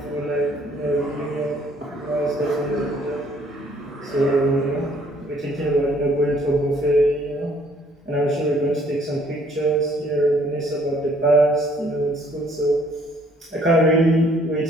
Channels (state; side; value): normal; both; correlation 0.62